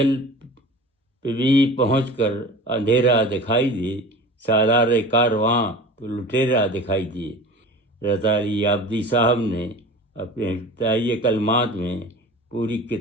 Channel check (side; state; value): both; normal; correlation 0.37